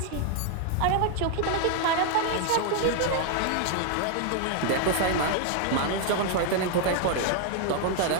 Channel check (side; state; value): both; different; correlation 0.00